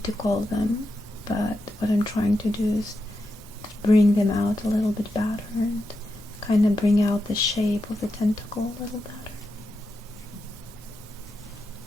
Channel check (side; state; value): both; normal; correlation 0.87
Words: to call them, but what I'm trying to do is to bring them out a little bit better and kind of bring out the shape of the tentacle a little better.